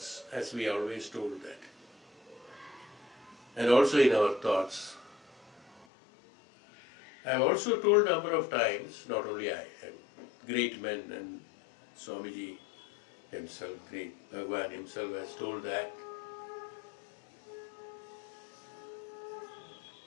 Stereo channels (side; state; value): right; drops out; at 5.9 s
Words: as we always told that. And also in our thoughts. I have also told a number of times, not only I, and great men, and Swamiji himself, great Bhagwan himself has told that